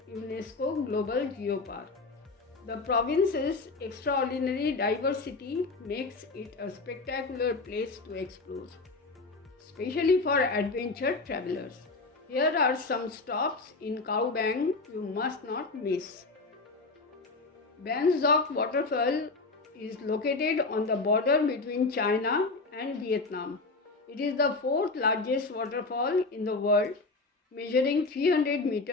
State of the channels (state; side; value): quieter; right; 3.6 dB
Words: UNESCO Global Geopark. The province's extraordinary diversity makes it a spectacular place to explore, especially for adventure travelers. Here are some stops in Cao Bang you must not miss. Ban Duc waterfall is located on the border between China and Vietnam. It is the 4th largest waterfall in the world, measuring 300